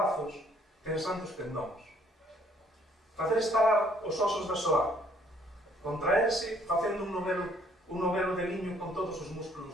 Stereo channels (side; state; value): both; normal; correlation 0.63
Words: tensando os tendóns. Facer estalar os osos da soar. Contraerse facendo un novelo de liño con todos os